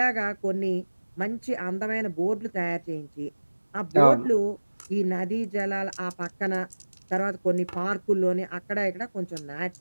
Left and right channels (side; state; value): both; inverted; correlation -1.00